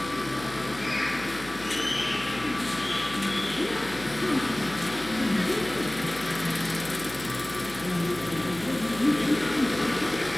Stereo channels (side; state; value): left; noise; hum, 16 dB below the sound